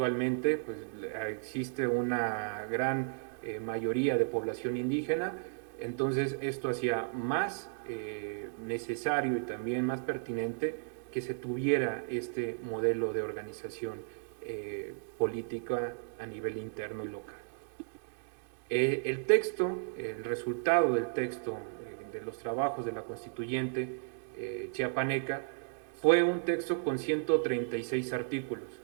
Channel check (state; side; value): silent; left; digital silence